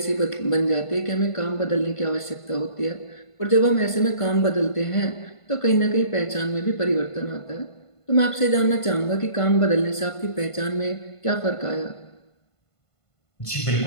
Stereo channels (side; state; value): right; late; 1.5 ms